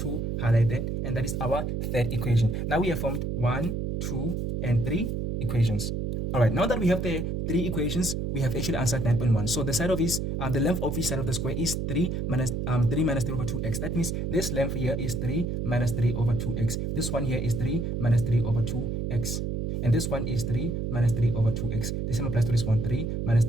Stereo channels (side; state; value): right; noise; hum, 2 dB below the sound